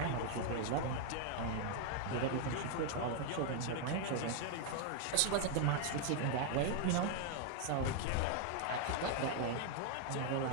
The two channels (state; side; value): different; both; correlation 0.00